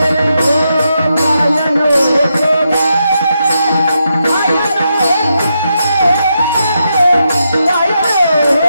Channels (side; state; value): both; inverted; correlation -0.83